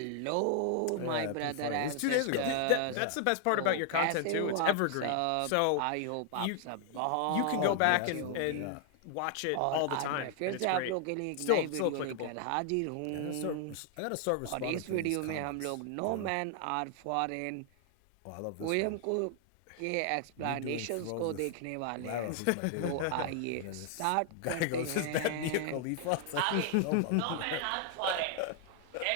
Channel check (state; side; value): different; both; correlation 0.00